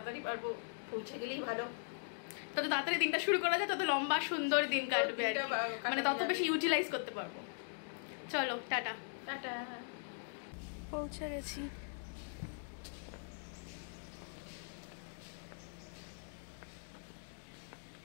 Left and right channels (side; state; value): right; silent; digital silence